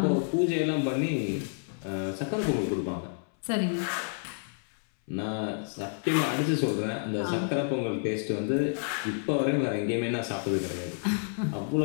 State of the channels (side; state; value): right; silent; 58 dB below the other